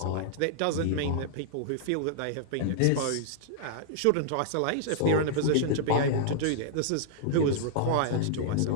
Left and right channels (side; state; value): both; different; correlation -0.01